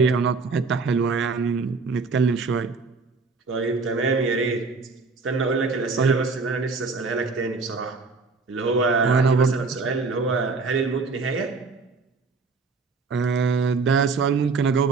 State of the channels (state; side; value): quieter; left; 4.3 dB